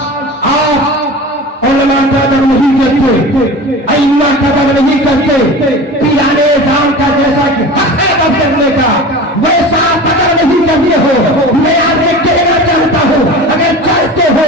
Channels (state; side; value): normal; both; correlation 0.34